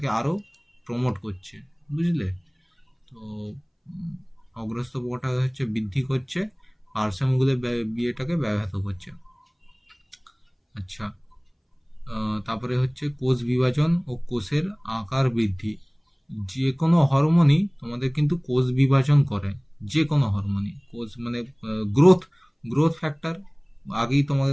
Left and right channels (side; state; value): both; identical; correlation 1.00